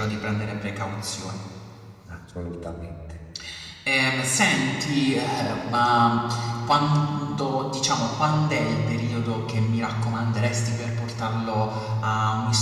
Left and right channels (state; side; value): identical; both; correlation 1.00